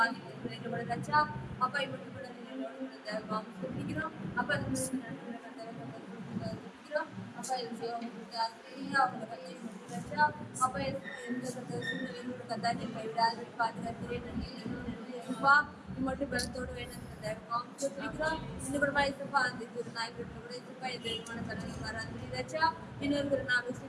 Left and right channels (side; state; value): both; identical; correlation 1.00